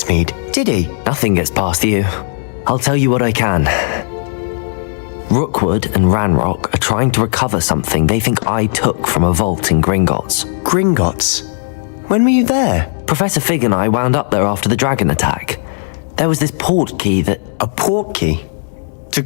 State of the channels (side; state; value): right; silent; digital silence